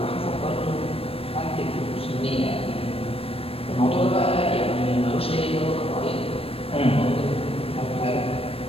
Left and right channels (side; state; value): right; late; 0.28 ms